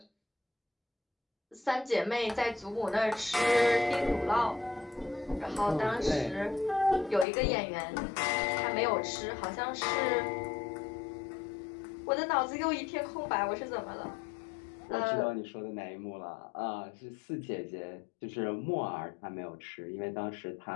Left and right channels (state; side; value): drops out; right; at 7.2 s